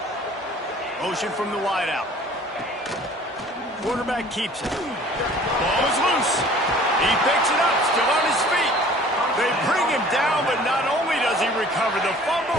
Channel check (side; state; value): both; normal; correlation 0.50